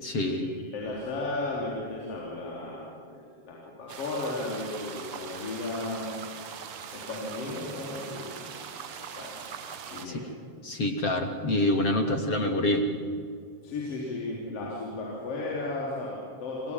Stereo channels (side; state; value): right; late; 7.5 ms